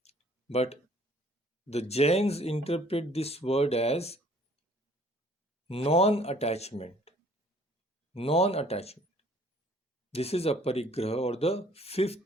But the Jains interpret this word as non-attachment. Non-attachment. This is aparigraha, or the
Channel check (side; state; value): both; normal; correlation 0.57